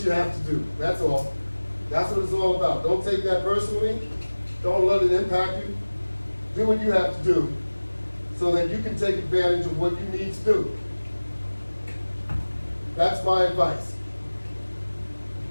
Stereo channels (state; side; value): inverted; both; correlation -1.00